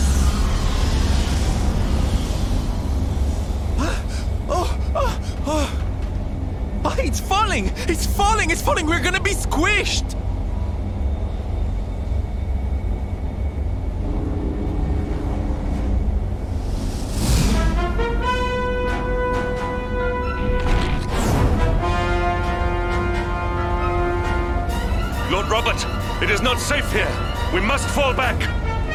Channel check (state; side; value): identical; both; correlation 1.00